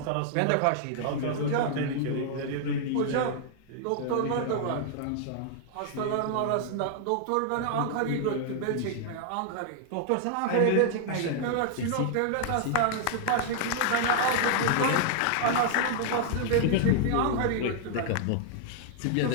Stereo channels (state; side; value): different; both; correlation 0.00